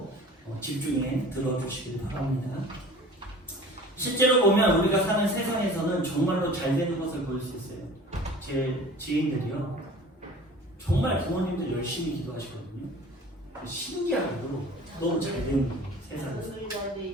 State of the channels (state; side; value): normal; both; correlation 0.43